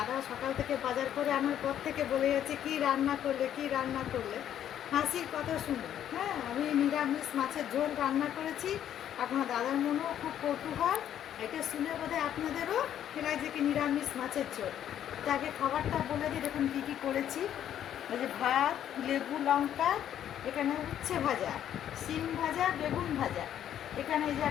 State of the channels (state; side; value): quieter; right; 10.4 dB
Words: সকাল থেকে বাজার করে আনার পর থেকে বলে যাচ্ছে কী রান্না করলে কী রান্না করলে। হাসির কথা শুনুন। হ্যাঁ, আমি নিরামিষ মাছের ঝোল রান্না করেছি। আপনার দাদার মনেও খুব কৌতূহল। এটা শুনে বোধহয় আপনাদেরও লাগছে কি নিরামিষ মাছের ঝোল। তাকে খাবারটা বলে দিই, দেখুন কী কী করেছি। এই যে ভাত, লেবু, লঙ্কা, এখানে উচ্ছে ভাজা, শিম ভাজা, বেগুন ভাজা, এখানে এই যে